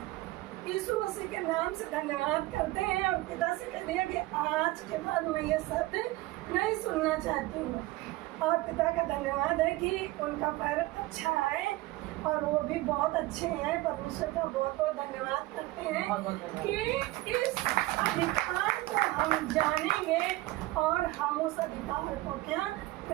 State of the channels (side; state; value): left; quieter; 19.0 dB